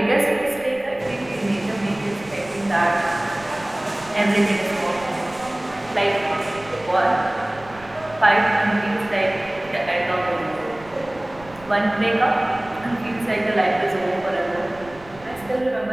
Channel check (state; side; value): noise; right; rumble, 21 dB below the sound